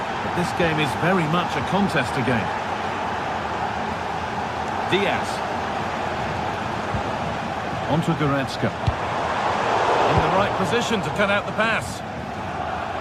this game is very much a contest again. Diaz. Onto Goretzka. In the right position to cut out the pass.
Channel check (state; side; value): identical; both; correlation 1.00